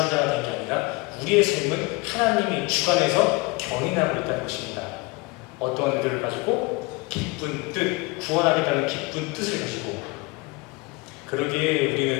된 게 아니라 우리의 삶은 하나님이 주관해서 견인하고 있다는 것입니다. 어떠한 의도를 가지고 기쁜 뜻, 구원하겠다는 기쁜 뜻을 가지고 그러기에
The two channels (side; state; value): right; quieter; 25.0 dB